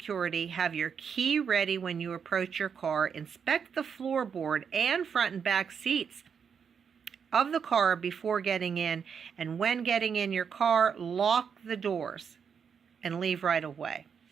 Have your key ready when you approach your car. Inspect the floorboard and front and back seats of the car before getting in. And when getting in your car, lock the doors and leave right away.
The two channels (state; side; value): quieter; left; 6.8 dB